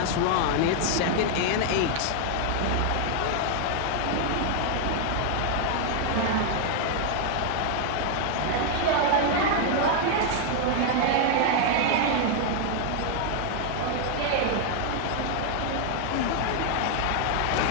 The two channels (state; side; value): different; both; correlation 0.00